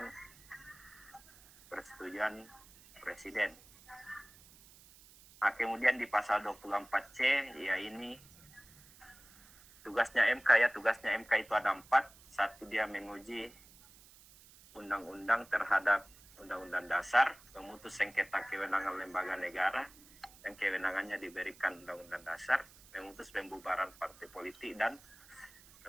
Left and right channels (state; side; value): noise; right; hiss, 23 dB below the sound